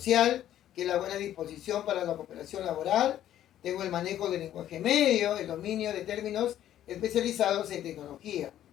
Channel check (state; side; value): quieter; right; 11.8 dB